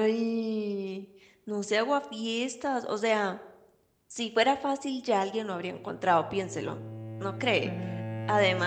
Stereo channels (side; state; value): both; identical; correlation 1.00